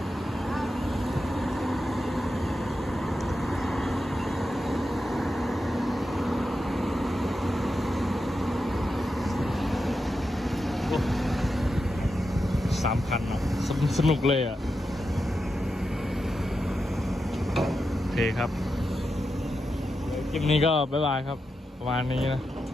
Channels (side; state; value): both; normal; correlation 0.88